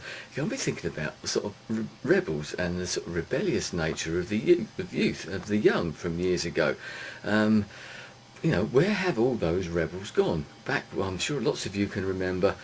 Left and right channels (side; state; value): both; identical; correlation 1.00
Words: going to be thinking about sort of rebels and the sort of rebellious nature of the youth, of the young from years ago. You know, where have all those rebels gone? Back, well, I'm sure lots of you can remember,